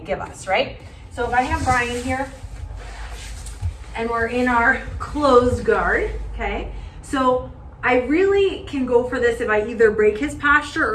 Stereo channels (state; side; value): identical; both; correlation 1.00